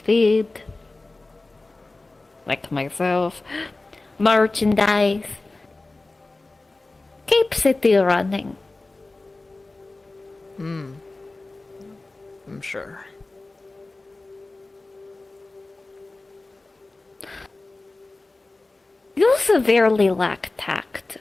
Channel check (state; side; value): quieter; right; 3.2 dB